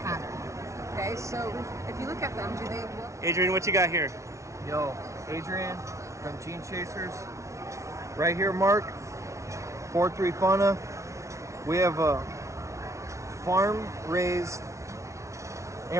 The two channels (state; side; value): late; left; 0.14 ms